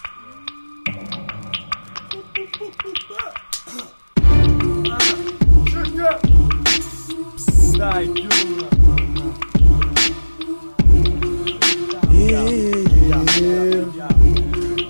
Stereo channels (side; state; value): both; inverted; correlation -1.00